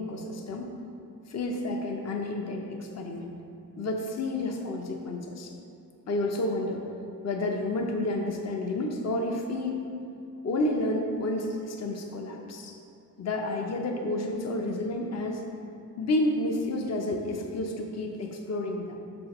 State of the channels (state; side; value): normal; both; correlation 0.18